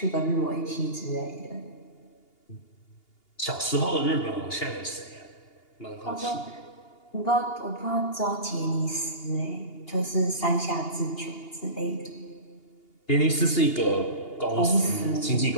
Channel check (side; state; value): right; late; 2.8 ms